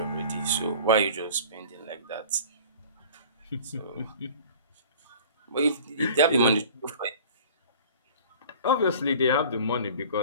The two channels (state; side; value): inverted; both; correlation -0.44